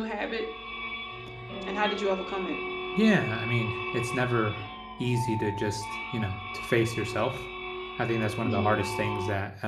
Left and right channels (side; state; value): both; identical; correlation 1.00